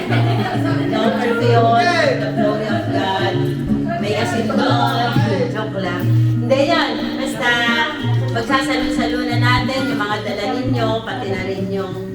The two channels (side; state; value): both; identical; correlation 1.00